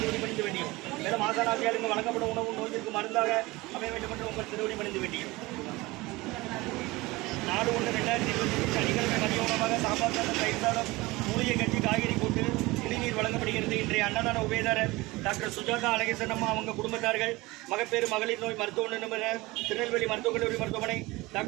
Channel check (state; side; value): quieter; left; 21.5 dB